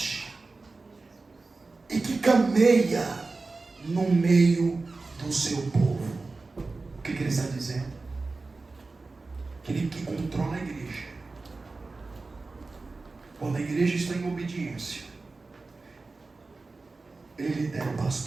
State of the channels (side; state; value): left; quieter; 3.7 dB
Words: e que cameia no meio do seu povo. O que ele está dizendo? Aquele que controla a igreja. Quando a igreja está em obediência, ele lidera o